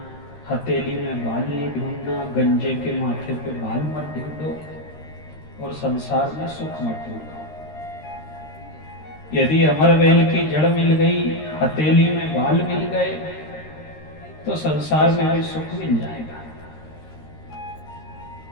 हथेली में बाल नहीं ढूंढना, गंजे के माथे पे बाल मत ढूंढो और संसार में सुख मत ढूंढो। यदि अमर बेल की जड़ मिल गई, हथेली में बाल मिल गए तो संसार में भी सुख मिल जाएगा।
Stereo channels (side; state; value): right; late; 13 ms